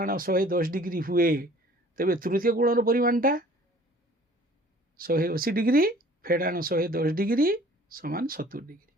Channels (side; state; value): both; normal; correlation 0.51